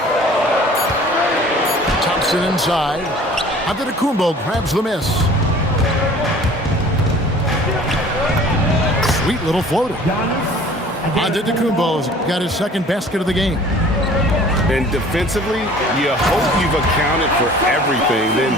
Thompson inside. Antetokounmpo grabs the miss. Sweet little floater. Antetokounmpo's got his second basket of the game. And defensively, you hope you've accounted for everything. Then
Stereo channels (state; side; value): normal; both; correlation 0.48